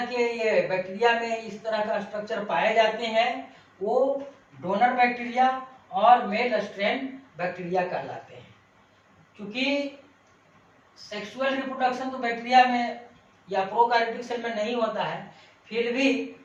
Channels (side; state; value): both; identical; correlation 1.00